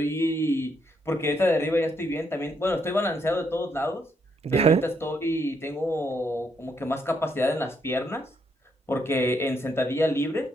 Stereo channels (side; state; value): both; normal; correlation 0.76